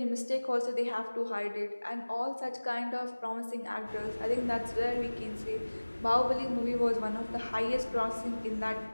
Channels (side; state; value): both; inverted; correlation -1.00